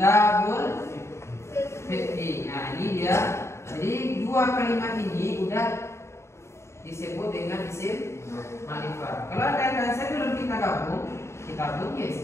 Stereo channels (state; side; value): late; right; 0.13 ms